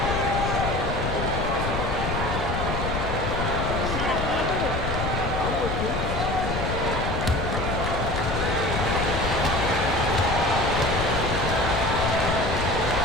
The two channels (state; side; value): noise; left; rumble, 2 dB below the sound